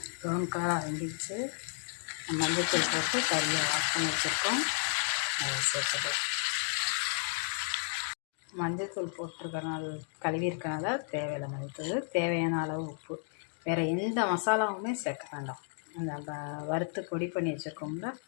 ப்ரௌன் கலராக வெந்துச்சு. மஞ்சத்தூள் போட்டு கறியை வாஷ் பண்ணி வச்சுருக்கோம், அதை சேர்த்துட்டோம். மஞ்சத்தூள் போட்டிருக்கனால கழுவிருக்கனால தேவையில்லை மஞ்சத்தூள், தேவையான அளவு உப்பு. வேறு எந்த மசாலாவுமே சேர்க்க வேண்டாம். அந்த வறுத்து பொடி பண்ணி வச்சுருக்கோம்ல,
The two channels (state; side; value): silent; right; 56 dB below the other